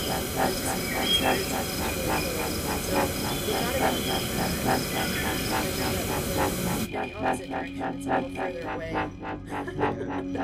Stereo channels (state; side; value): identical; both; correlation 1.00